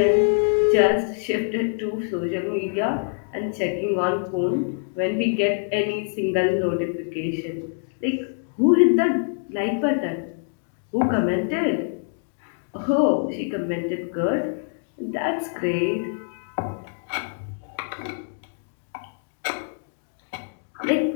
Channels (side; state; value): right; silent; digital silence